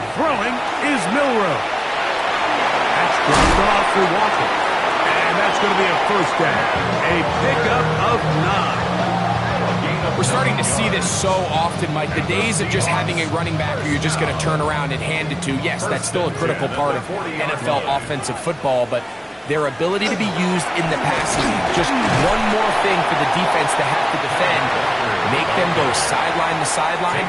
Throwing is Milroe. That's dropped off for Walker. And that's going to be a first down. A pickup of 9. We're starting to see this so often, Mike. The days of just having a running back where you're just going to turn around and hand it to, yes, that's still a critical part of NFL offensive football, but their ability to be used in the passing game, just one more thing for the defense to have to defend, make them go sideline to sideline,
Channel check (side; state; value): both; identical; correlation 1.00